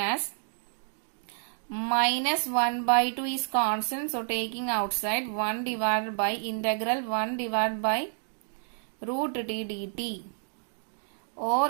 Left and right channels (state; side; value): silent; left; digital silence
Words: minus 1 by 2 is constant, so taking outside 1 divided by integral 1 divided by root t dt,